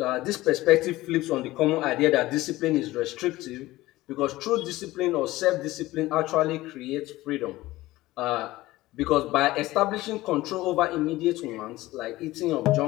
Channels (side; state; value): right; quieter; 17.8 dB